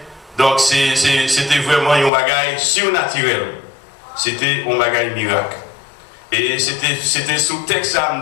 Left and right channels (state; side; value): drops out; right; at 2.1 s